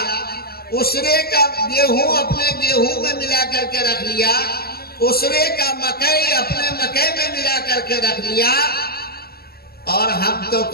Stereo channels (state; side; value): late; right; 0.45 ms